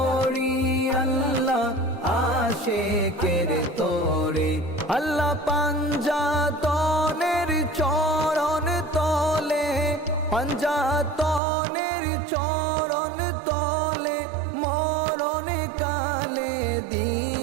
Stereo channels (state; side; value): drops out; left; at 11.4 s